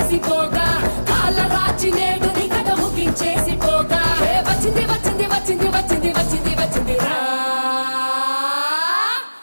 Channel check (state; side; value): inverted; both; correlation -1.00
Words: పోగా కాళ్ళ రాచి నేడు నిగడ ముగించేసి పోగా వచ్చింది వచ్చింది వచ్చింది వచ్చింది వచ్చింది వచ్చింది రా